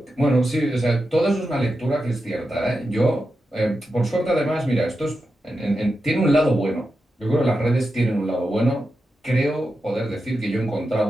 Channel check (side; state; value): both; normal; correlation 0.89